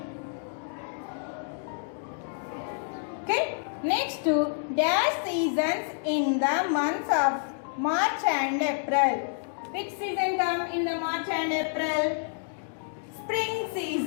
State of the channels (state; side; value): silent; right; digital silence